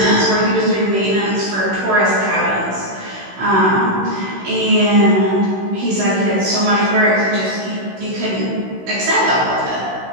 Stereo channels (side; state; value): left; late; 16 ms